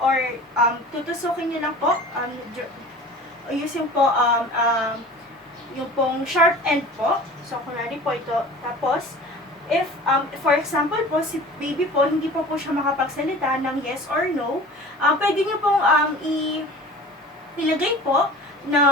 tutusukin niyo lang po. Using po yung pong sharp end po. So, kunwari po ito. Tapos, if, for example po, si baby po, hindi po siya makapagsalita ng yes or no, pwede niyo pong ilagay po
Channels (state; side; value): normal; both; correlation 0.40